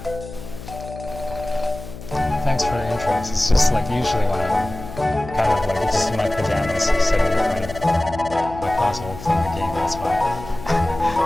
Thanks for the interest. It's just like usually when I'm kind of like just in my pajamas sitting in front of my console playing the game, that's why.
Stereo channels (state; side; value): noise; left; hum, 13 dB below the sound